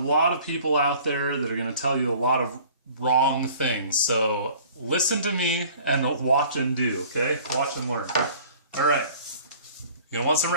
lot of people out there that are going to tell you a lot of wrong things, so listen to me and watch and do, okay? Watch and learn. All right, you're going to want some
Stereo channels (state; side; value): inverted; both; correlation -0.50